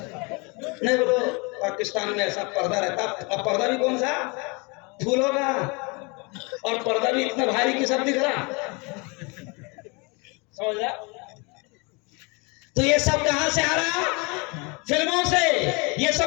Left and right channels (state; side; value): quieter; right; 29.8 dB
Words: نہیں بولو پاکستان میں ایسا پردہ رہتا. اب پردہ بھی کون سا؟ پھولوں کا. اور پردہ بھی اتنا بھاری کی سب دکھ رہا. سمجھ رہا؟ تو یہ سب کہاں سے آ رہا؟ فلموں سے. یہ